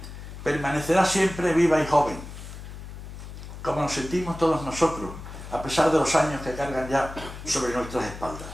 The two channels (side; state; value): left; noise; hum, 12 dB below the sound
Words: permanecerá siempre viva y joven, como nos sentimos todos nosotros, a pesar de los años que cargan ya sobre nuestras espaldas.